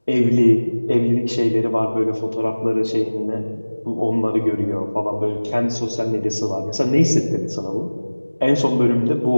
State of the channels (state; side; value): inverted; both; correlation -1.00